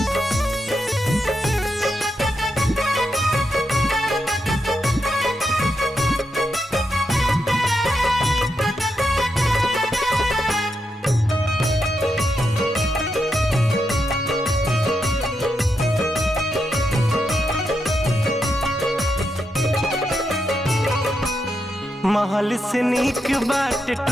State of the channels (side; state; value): both; normal; correlation 0.84